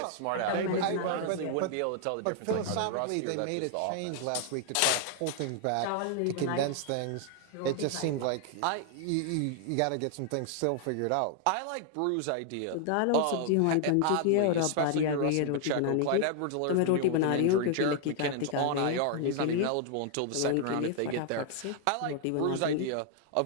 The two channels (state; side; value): different; both; correlation 0.00